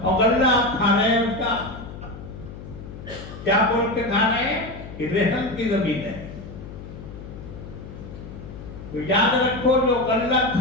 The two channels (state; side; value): noise; left; hum, 13 dB below the sound